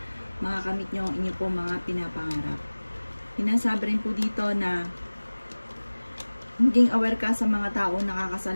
makakamit nyo ang inyong po mga pinapangarap. Sinasabi rin po dito na maging aware ka sa mga taong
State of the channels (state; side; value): inverted; both; correlation -1.00